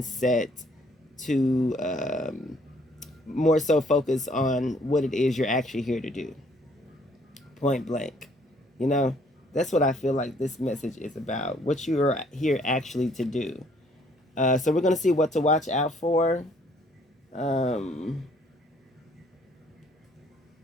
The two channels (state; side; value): normal; both; correlation 0.63